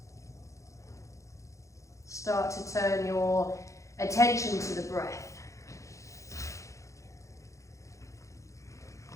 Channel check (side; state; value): right; late; 0.15 ms